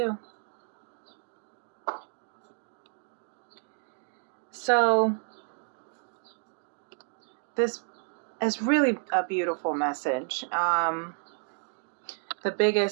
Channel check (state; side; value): silent; left; 57 dB below the other